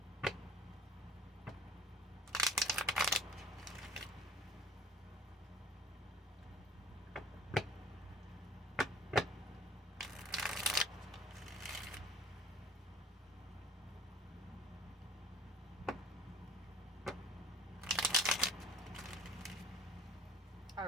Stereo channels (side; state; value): both; normal; correlation 0.46